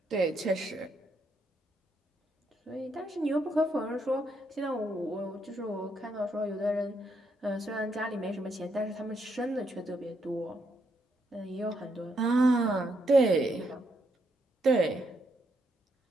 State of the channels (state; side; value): normal; both; correlation 0.77